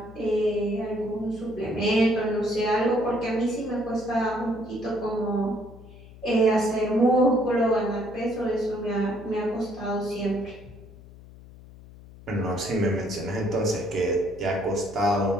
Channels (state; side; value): noise; left; hum, 19 dB below the sound